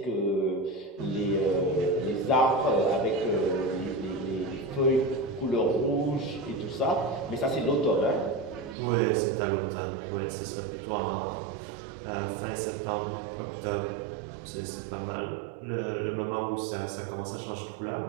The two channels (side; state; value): left; drops out; at 8.8 s